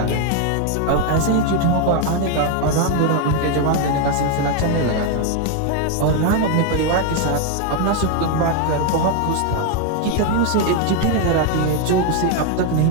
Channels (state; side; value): different; both; correlation 0.01